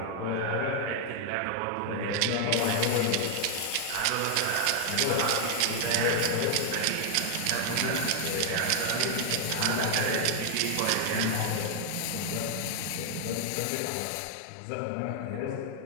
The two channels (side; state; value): both; different; correlation 0.00